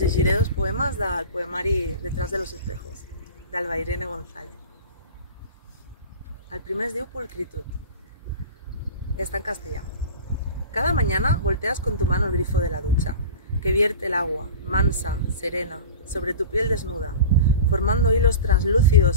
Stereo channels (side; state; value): both; inverted; correlation -0.34